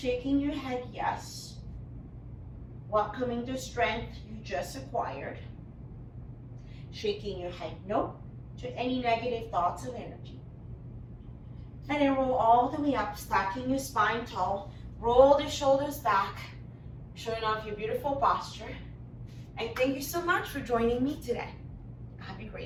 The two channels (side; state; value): both; identical; correlation 1.00